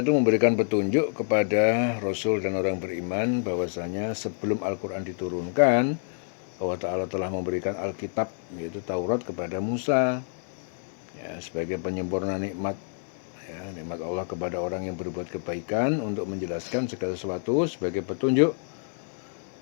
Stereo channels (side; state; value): right; silent; digital silence